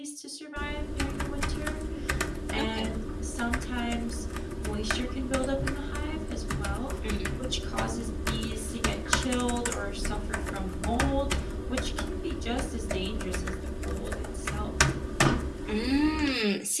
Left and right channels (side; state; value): both; identical; correlation 1.00